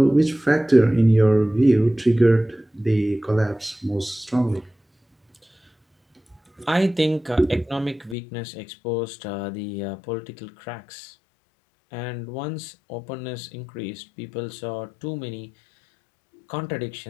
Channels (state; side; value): drops out; right; at 8.2 s